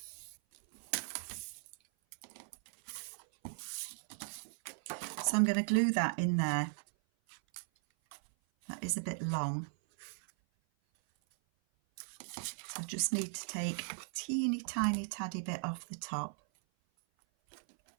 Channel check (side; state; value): left; silent; 53 dB below the other